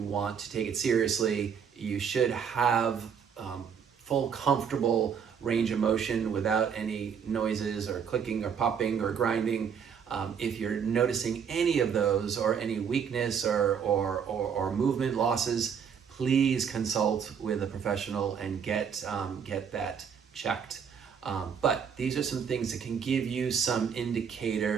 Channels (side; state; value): left; quieter; 7.2 dB